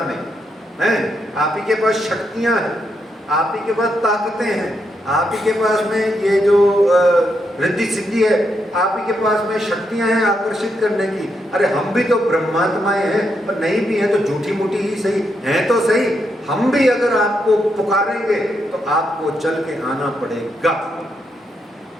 में? हैं? आप ही के पास शक्तियां हैं, आप ही के पास ताकतें हैं, आप ही के पास में ये जो रिद्धि सिद्धि है, आप ही के पास में शक्तियां हैं आकर्षित करने की। अरे हम भी तो ब्रह्मात्माएं हैं, पर नहीं भी हैं तो झूठी मूठी ही सही हैं तो सही। हम भी अगर आपको पुकारेंगे तो आपको चल के आना पड़ेगा,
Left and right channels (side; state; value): both; normal; correlation 0.80